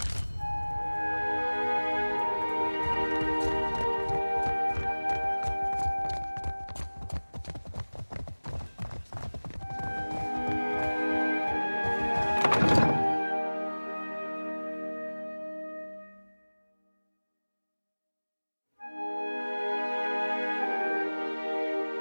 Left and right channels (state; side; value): inverted; both; correlation -1.00